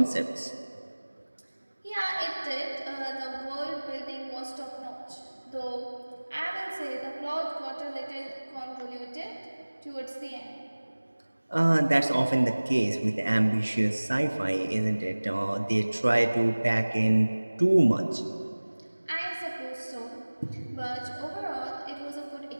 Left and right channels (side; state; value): both; inverted; correlation -1.00